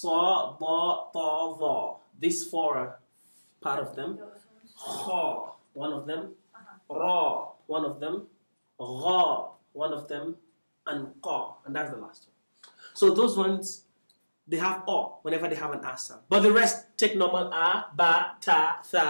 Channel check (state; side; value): inverted; both; correlation -1.00